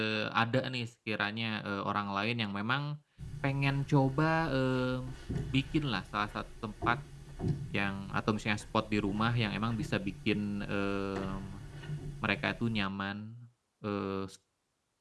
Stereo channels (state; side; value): identical; both; correlation 1.00